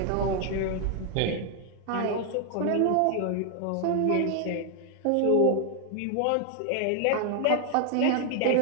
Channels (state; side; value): different; both; correlation 0.00